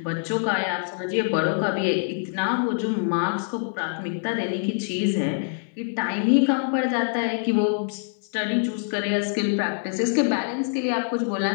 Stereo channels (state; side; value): silent; right; digital silence